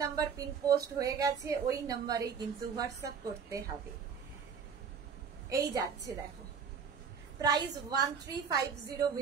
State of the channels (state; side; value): quieter; left; 6.5 dB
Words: নাম্বার পিন পোস্ট হয়ে গেছে, ওই নাম্বারেই কিন্তু হোয়াটসঅ্যাপ করতে হবে। এই যাচ্ছে দেখো, প্রাইস 1350